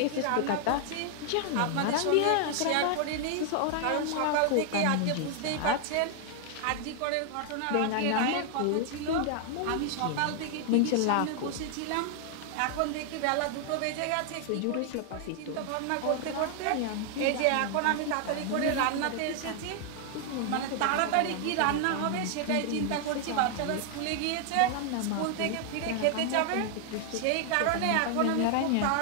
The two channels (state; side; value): different; both; correlation 0.00